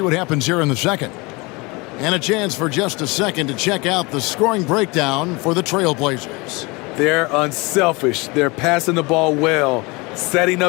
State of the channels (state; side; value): quieter; right; 25.8 dB